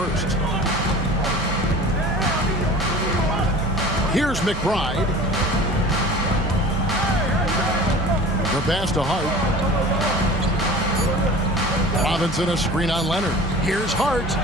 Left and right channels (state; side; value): normal; both; correlation 0.41